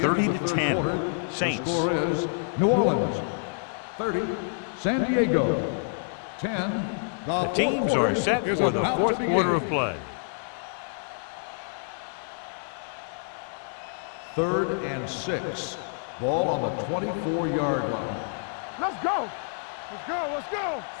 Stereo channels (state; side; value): silent; right; digital silence